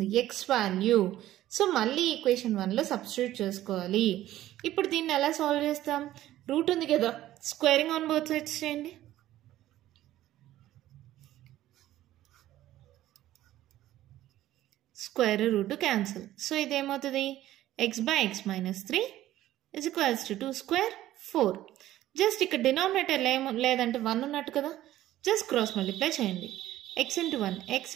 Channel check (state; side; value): quieter; left; 14.1 dB